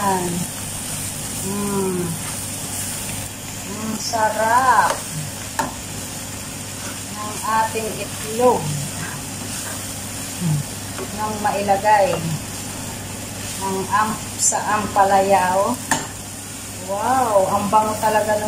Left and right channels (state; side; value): identical; both; correlation 1.00